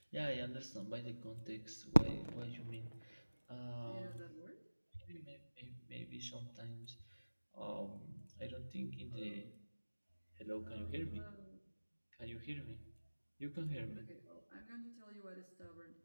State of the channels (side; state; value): both; inverted; correlation -1.00